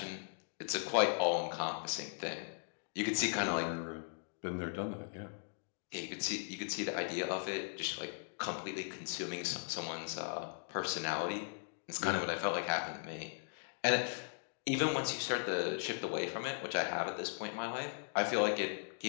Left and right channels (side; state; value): right; silent; digital silence